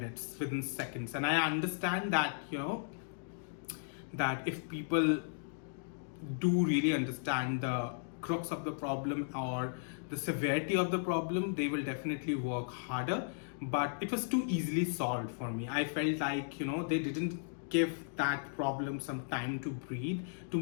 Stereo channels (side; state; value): right; silent; digital silence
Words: within seconds. And I understand that, that if people do really understand the crux of the problem or the severity of the problem, they will definitely work harder. But it was too easily solved for me. I felt like they didn't give that problem some time to breathe,